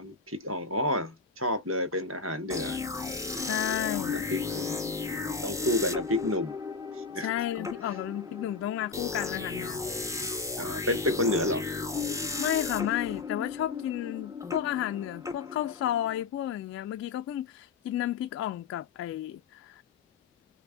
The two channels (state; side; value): quieter; right; 4.7 dB